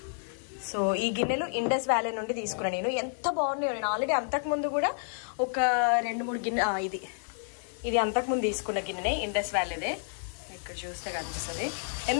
సో ఈ గిన్నెలు ఇండస్ వ్యాలీ నుండి తీసుకున్నాను నేను. ఎంత బాగున్నాయో. నేను ఆల్రెడీ అంతకుముందు కూడా ఒక 2-3 గిన్నె ఇది అంతకుముందు తీసుకున్న గిన్నెనే, ఇండస్ వ్యాలీదే. ఇక్కడ చూస్తే కనిపిస్తుంది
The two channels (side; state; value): right; silent; digital silence